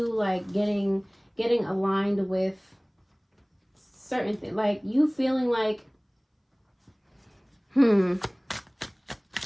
like getting aligned with certain things, like you feeling like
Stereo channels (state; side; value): identical; both; correlation 1.00